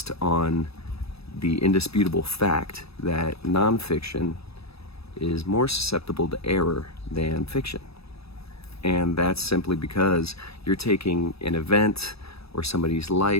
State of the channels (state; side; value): late; right; 0.77 ms